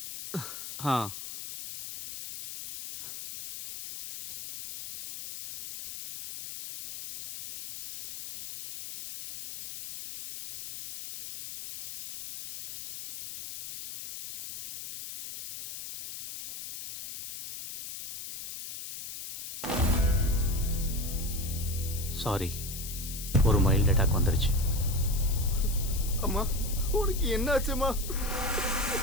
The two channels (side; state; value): left; noise; hiss, 10 dB below the sound